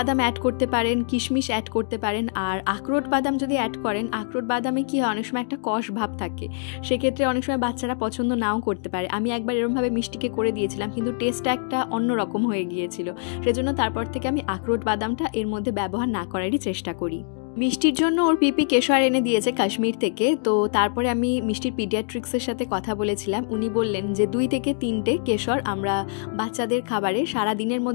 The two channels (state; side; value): silent; right; digital silence